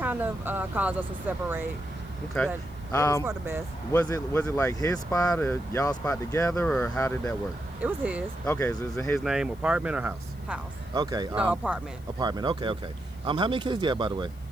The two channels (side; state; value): left; noise; hiss, 27 dB below the sound